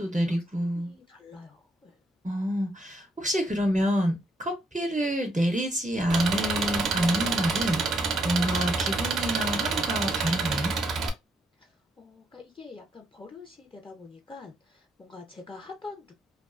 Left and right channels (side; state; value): both; normal; correlation 0.76